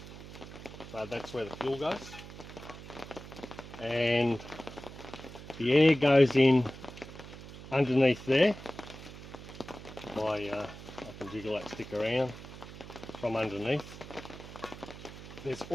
so that's where the fuel goes. And the air goes in underneath there. I can jiggle that stick around from underneath. There's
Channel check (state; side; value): noise; right; hum, 14 dB below the sound